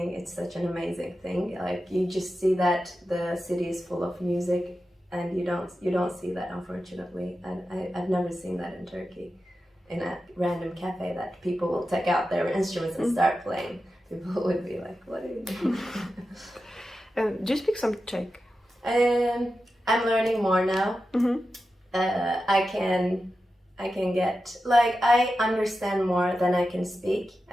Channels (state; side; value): normal; both; correlation 0.91